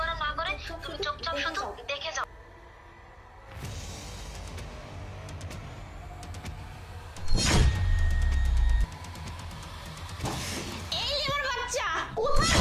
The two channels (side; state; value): both; identical; correlation 1.00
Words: না করে তুমি চুপচাপ শুধু দেখে যাও। এই লিমার বাচ্চা, কোথায়